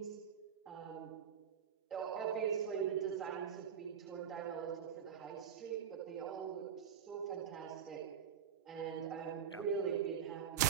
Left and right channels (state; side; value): quieter; left; 8.4 dB